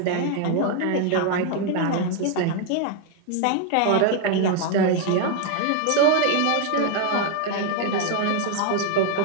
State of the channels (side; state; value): both; different; correlation 0.00